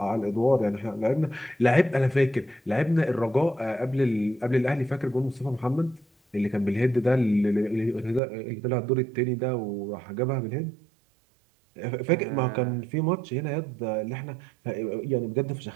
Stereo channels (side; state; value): left; drops out; at 8.2 s